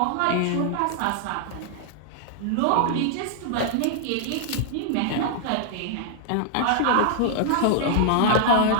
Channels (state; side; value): different; both; correlation -0.01